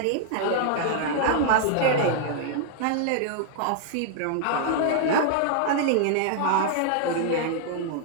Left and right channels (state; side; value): different; both; correlation -0.01